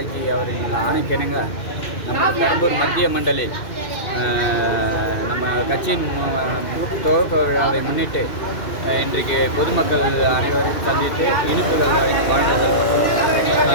அவரின் ஆணைக்கிணங்க நமது பெரம்பூர் மத்திய மண்டலி நம்ம கட்சியின் துவக்க விழாவை முன்னிட்டு இன்றைக்கு பொதுமக்கள் அனைவரையும் சந்தித்து இனிப்புகள்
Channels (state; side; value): late; right; 2.5 ms